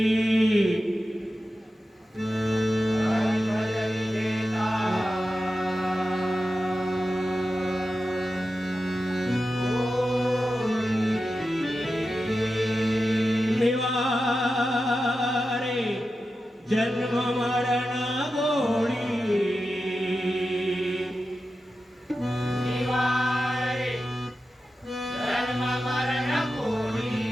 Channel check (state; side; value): normal; both; correlation 0.92